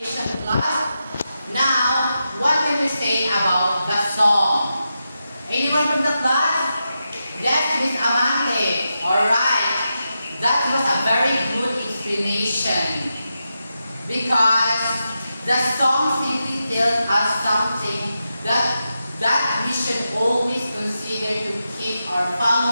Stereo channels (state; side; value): inverted; both; correlation -0.88